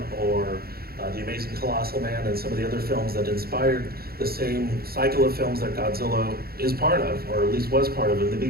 or The Amazing Colossal Man and some of the other films that inspired the same cycle of films that Godzilla is part of, or at least was part of in the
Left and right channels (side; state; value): left; late; 0.44 ms